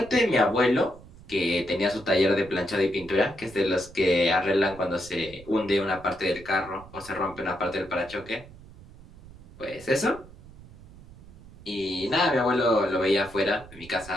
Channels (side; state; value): right; noise; rumble, 20 dB below the sound